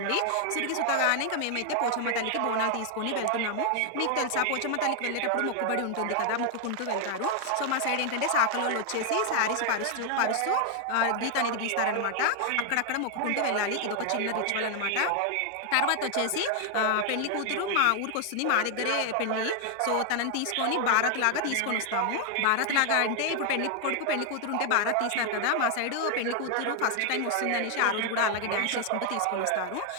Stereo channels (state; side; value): different; both; correlation 0.00